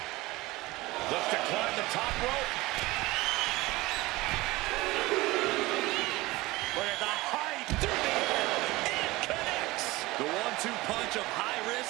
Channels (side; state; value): left; quieter; 20.3 dB